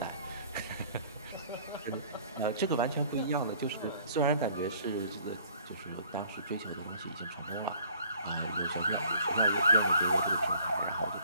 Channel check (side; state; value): both; inverted; correlation -0.57